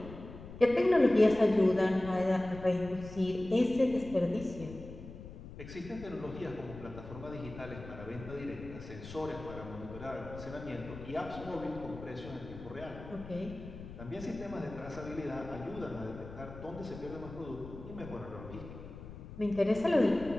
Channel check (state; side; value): noise; left; rumble, 13 dB below the sound